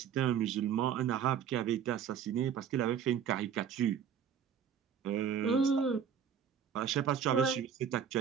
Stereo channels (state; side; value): quieter; left; 8.0 dB